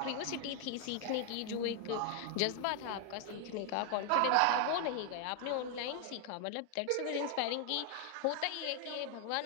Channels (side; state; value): both; different; correlation 0.00